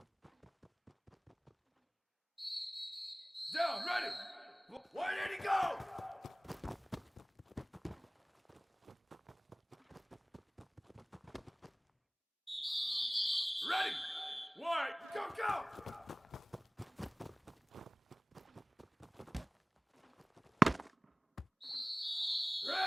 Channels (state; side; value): normal; both; correlation 0.98